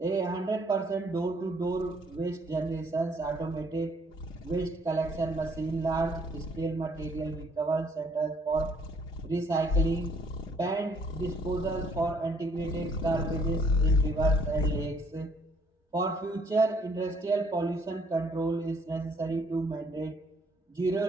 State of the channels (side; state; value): both; normal; correlation 0.64